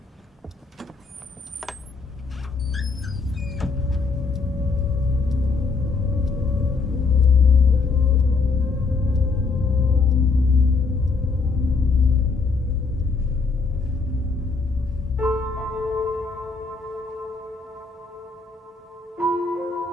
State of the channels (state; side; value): quieter; right; 4.4 dB